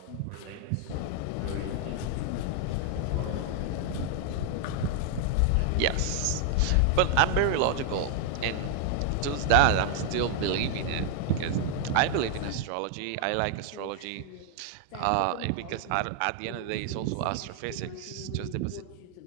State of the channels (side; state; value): both; different; correlation 0.00